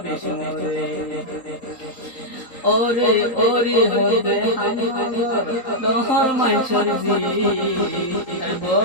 বেশমরে ওরে ওরে হদে দহর মাইছর জি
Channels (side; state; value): right; late; 3.8 ms